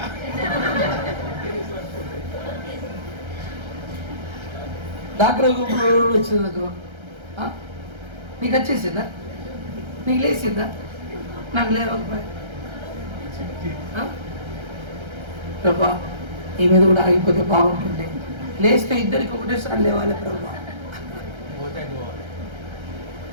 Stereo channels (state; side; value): late; left; 1.3 ms